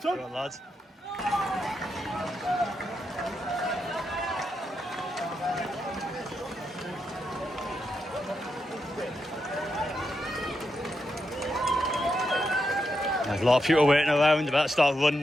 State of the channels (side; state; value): both; normal; correlation 0.84